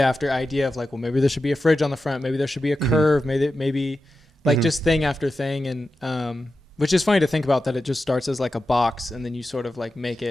after idea of like, well, maybe there should be a fridge on the front. Maybe there should be a curve. Maybe like just thing after thing. And which is funny to think about that it just starts as like a box and then you sort of like make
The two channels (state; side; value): normal; both; correlation 0.91